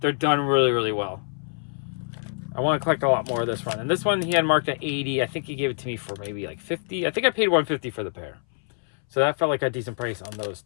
done really, really well. I want to collect a lot more of this run. And this one he had marked at 80. I think he gave it to me for maybe like 50. I think I paid 150 for the pair. So that felt like a decent price on those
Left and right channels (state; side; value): silent; right; 60 dB below the other